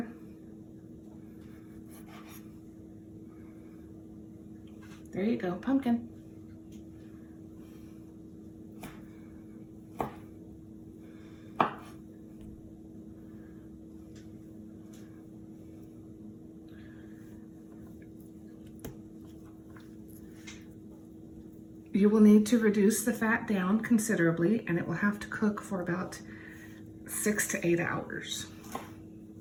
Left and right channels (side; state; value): both; identical; correlation 1.00